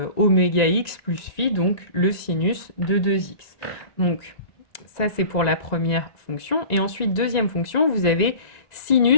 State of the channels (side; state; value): right; late; 1.9 ms